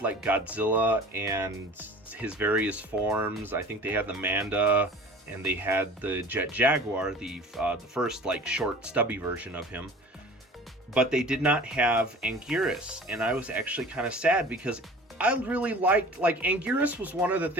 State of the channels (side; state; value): both; normal; correlation 0.42